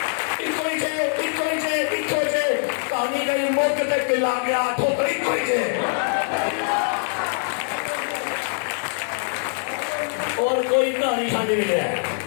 ایکو ہی جے, ایکو ہی جے, ایکو ہی جے, کہانی گئی موقع تک لا گیا ٹھوکر, ایکو ہی جے. اور کوئی کہانی کھانے نہیں ہے.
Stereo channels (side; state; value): right; silent; 63 dB below the other